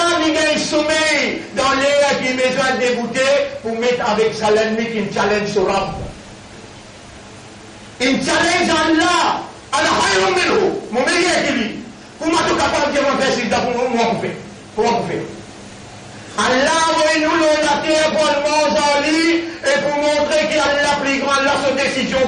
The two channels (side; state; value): both; identical; correlation 1.00